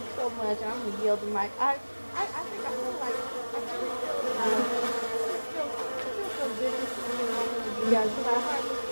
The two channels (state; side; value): inverted; both; correlation -1.00